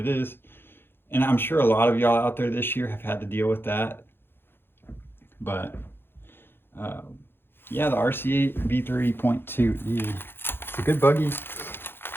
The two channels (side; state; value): right; late; 0.10 ms